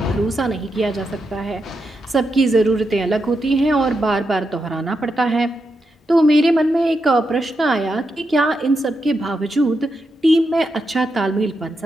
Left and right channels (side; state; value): both; normal; correlation 0.85